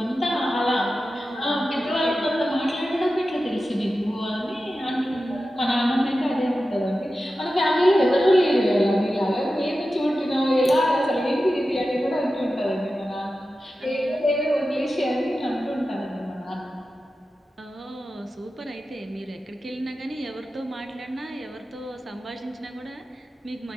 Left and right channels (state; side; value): normal; both; correlation 0.93